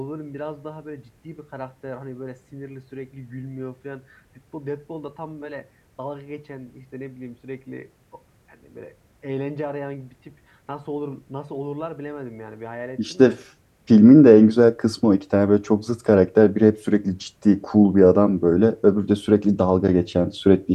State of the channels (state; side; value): identical; both; correlation 1.00